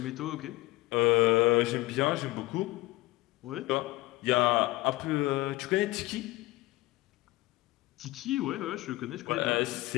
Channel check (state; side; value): quieter; right; 19.5 dB